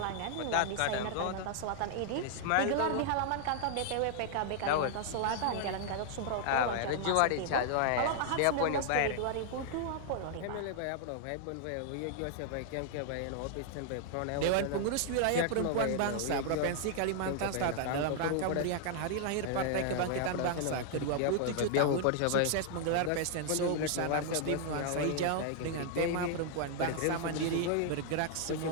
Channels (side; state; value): both; different; correlation 0.00